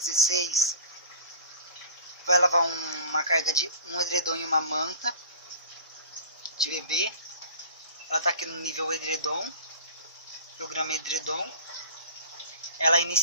vai lavar uma carga de um edredom e uma manta de bebê. Ela está aqui no nível edredom, programa edredom. Ela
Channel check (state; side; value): inverted; both; correlation -0.38